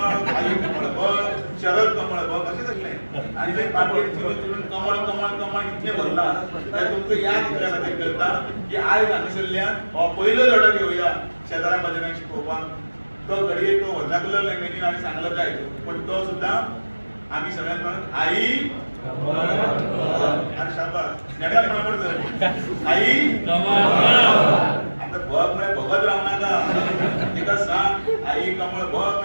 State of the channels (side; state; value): both; inverted; correlation -1.00